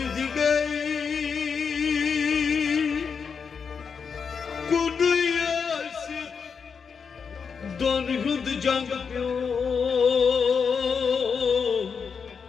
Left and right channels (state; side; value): quieter; right; 6.0 dB